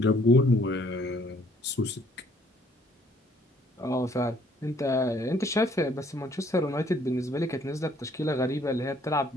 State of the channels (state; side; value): normal; both; correlation 0.63